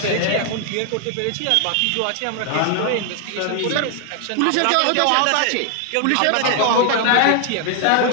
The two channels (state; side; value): different; both; correlation 0.00